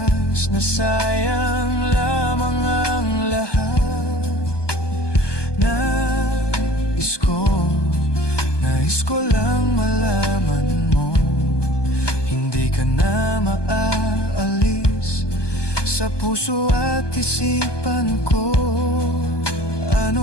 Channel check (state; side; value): late; right; 1.2 ms